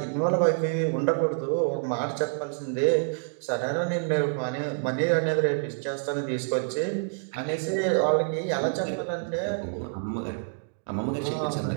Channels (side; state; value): left; silent; digital silence